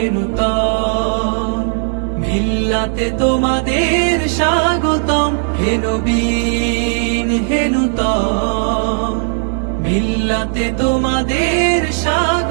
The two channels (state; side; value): silent; left; 60 dB below the other